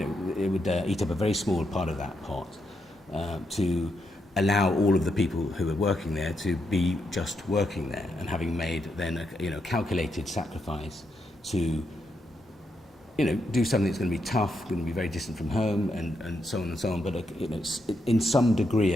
would eat up a very small part of that pot to allow all of the people who are working there to be just working there, and having made then a calculated sacrifice to do something that's going to be tough, going to be very distant from home, and so on and so on, but in some degree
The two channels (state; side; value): normal; both; correlation 0.81